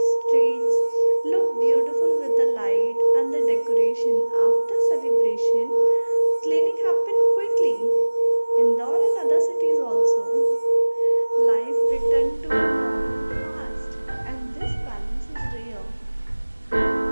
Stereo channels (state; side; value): inverted; both; correlation -1.00